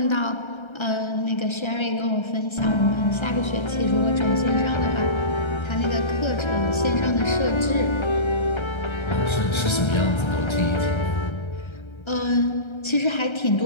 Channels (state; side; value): late; right; 1.3 ms